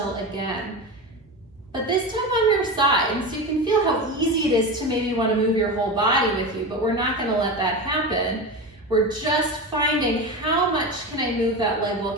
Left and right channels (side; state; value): both; normal; correlation 0.23